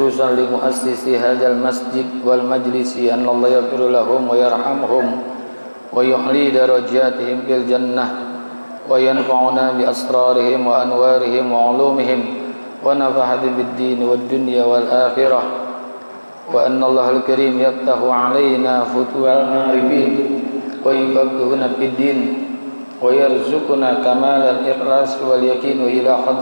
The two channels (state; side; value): inverted; both; correlation -1.00